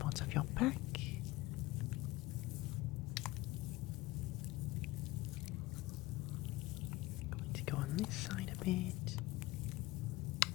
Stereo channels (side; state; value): right; quieter; 19.5 dB